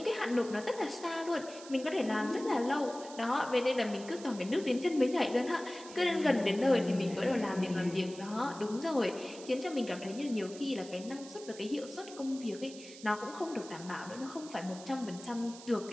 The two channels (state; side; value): noise; right; hiss, 16 dB below the sound